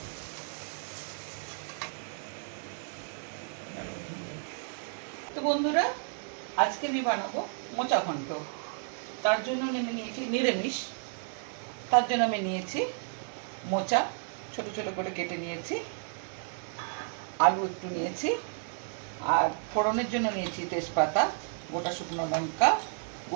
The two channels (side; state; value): left; silent; 56 dB below the other